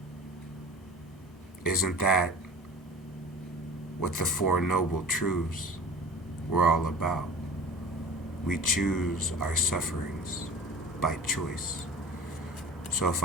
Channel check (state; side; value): normal; both; correlation 0.39